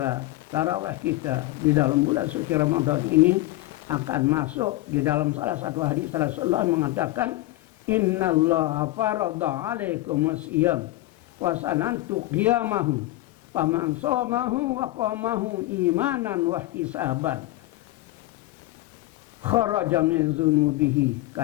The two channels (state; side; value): quieter; right; 17.6 dB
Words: tarawih kita di dalam bulan suci Ramadan ini akan masuk di dalam salah satu hadis Rasulullah mengatakan, innallaha farada alaikumus siyam wa sanantu qiyamahu faman shamahu wa qamahu imanan wa ihtisaban kharaja min dzunubihi